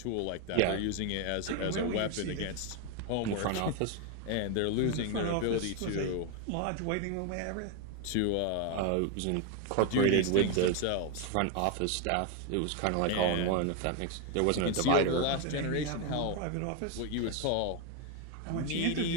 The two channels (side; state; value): both; different; correlation 0.01